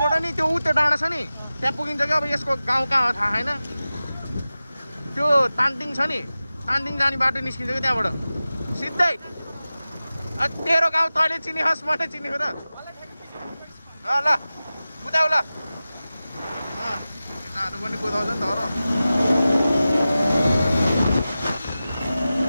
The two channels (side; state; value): both; inverted; correlation -0.95